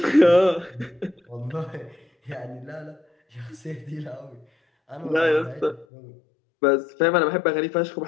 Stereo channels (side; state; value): right; drops out; at 5.9 s